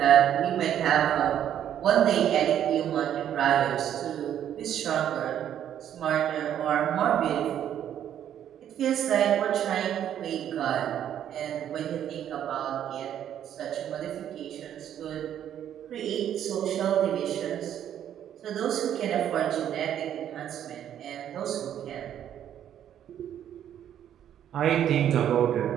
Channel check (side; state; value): left; quieter; 10.2 dB